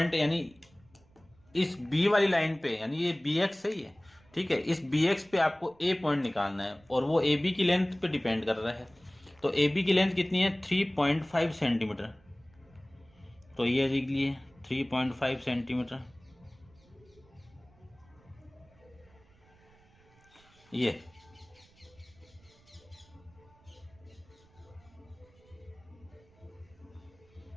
यानी इस बी वाली लाइन पे, यानी ये बी एक्स है ये, ठीक है, इस बी एक्स पे आपको ए पॉइंट निकालना है और वो ए बी की लेंथ पे डिपेंड कर रहा है। तो ए बी की लेंथ कितनी है 3.5 सेंटीमीटर, तो ये लिख लिए 3.5 सेंटीमीटर। ये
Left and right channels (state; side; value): noise; right; rumble, 29 dB below the sound